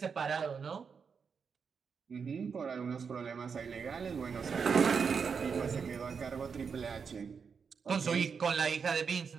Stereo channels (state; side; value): quieter; left; 6.0 dB